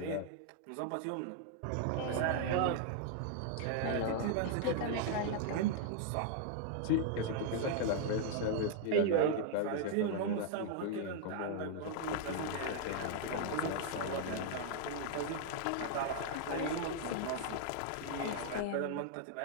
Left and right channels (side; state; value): both; different; correlation -0.01